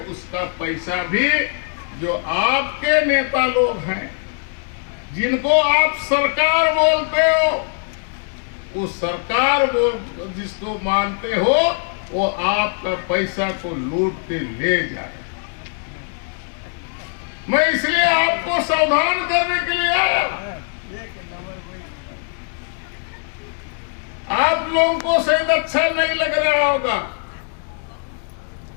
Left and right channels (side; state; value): right; silent; 55 dB below the other